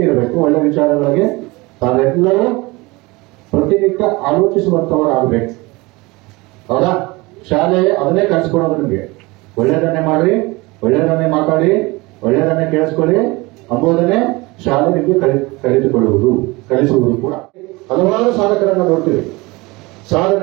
ಇರಬೇಕು, ಒಳ್ಳೆ ವಿಚಾರಗಳಿಗೆ ತಾವೆಲ್ಲರೂ ಪ್ರತಿನಿತ್ಯ ಆಲೋಚಿಸುವಂತವರಾಗಬೇಕು. ಹೌದಾ? ಶಾಲೆ ಅದನ್ನೇ ಕಲಿಸ್ಕೊಡೋದು ನಿಮಗೆ. ಒಳ್ಳೆಯದನ್ನೇ ಮಾಡ್ರಿ, ಒಳ್ಳೆಯದನ್ನೇ ಮಾತಾಡಿ, ಒಳ್ಳೆಯದನ್ನೇ ಕೇಳಿಸ್ಕೊಳ್ಳಿ ಎಂಬುದನ್ನೇ ಶಾಲೆ ನಿಮಗೆ ಕಲಿಸುವುದು ಕೂಡ. ಹಲವಾರು ಸಾಧಕರನ್ನ ನೋಡ್ತೀವಿ,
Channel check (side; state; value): left; quieter; 23.5 dB